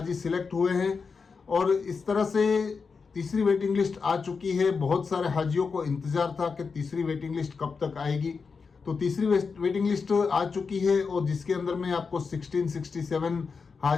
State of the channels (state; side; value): quieter; right; 5.1 dB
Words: सिलेक्ट हुए हैं और इस तरह से तीसरी वेटिंग लिस्ट आ चुकी है। बहुत सारे हाजियों को इंतजार था कि तीसरी वेटिंग लिस्ट कब तक आएगी। तो तीसरी वेटिंग लिस्ट आ चुकी है और जिसके अंदर में आपको 1667